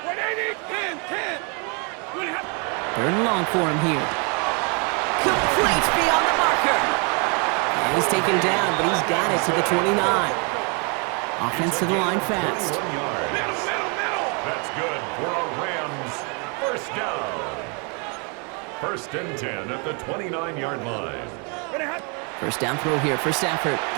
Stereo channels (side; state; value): left; quieter; 34.8 dB